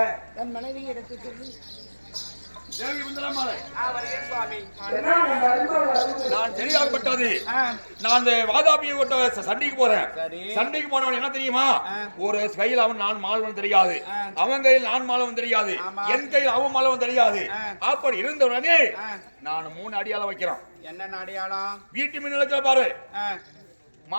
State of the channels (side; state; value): both; inverted; correlation -1.00